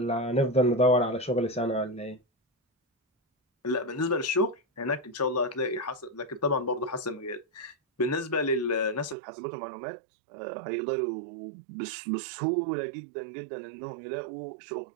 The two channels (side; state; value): left; drops out; at 9.2 s